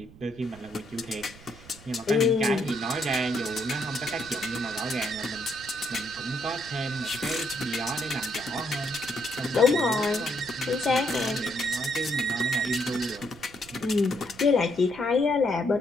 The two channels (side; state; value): right; noise; rumble, 20 dB below the sound